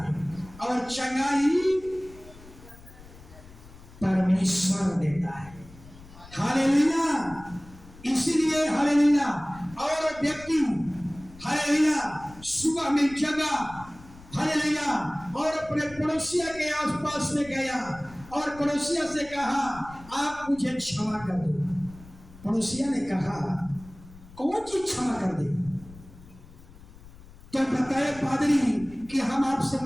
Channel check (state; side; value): noise; left; rumble, 20 dB below the sound